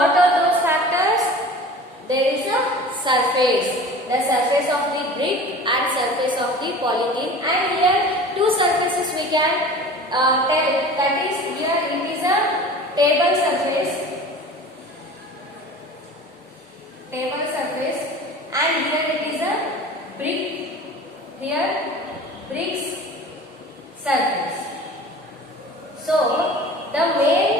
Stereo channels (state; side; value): normal; both; correlation 0.39